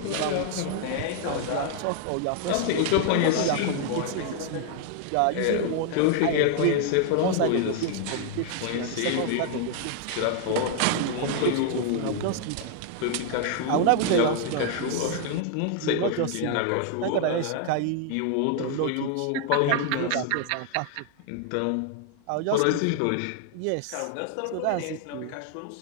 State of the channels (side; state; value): both; different; correlation 0.00